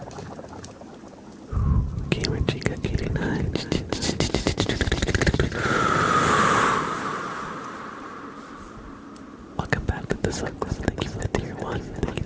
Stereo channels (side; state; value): both; identical; correlation 1.00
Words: Gamer Chica 89. Welcome back to the sub club. Thank you for the tier 1.